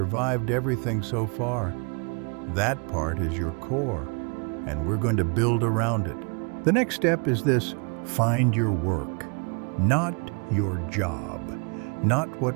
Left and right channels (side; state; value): left; quieter; 36.3 dB